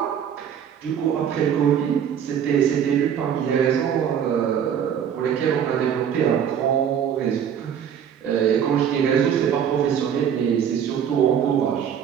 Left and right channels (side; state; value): left; quieter; 8.5 dB